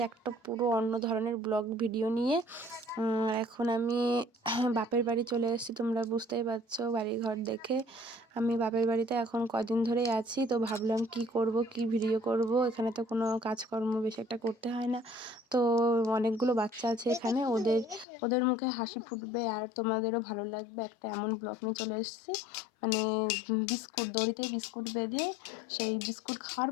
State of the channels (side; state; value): right; drops out; at 18.1 s